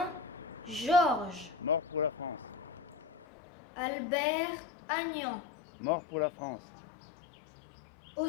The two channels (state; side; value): drops out; right; at 3.2 s